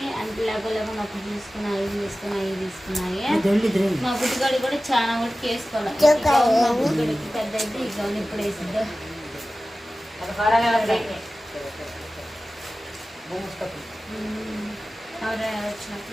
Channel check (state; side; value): normal; both; correlation 0.96